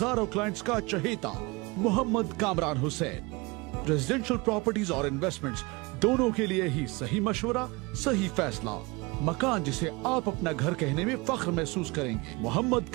क्लाइंट्स का चहेता मोहम्मद कामरान हुसैन। रेजिडेंशियल प्रॉपर्टीज और इन्वेस्टमेंट्स दोनों के लिए ही सही मशवरा, सही फैसला। मकान जिसे आप अपना घर कहने में फख्र महसूस करेंगे। Mohammad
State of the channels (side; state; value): left; quieter; 25.2 dB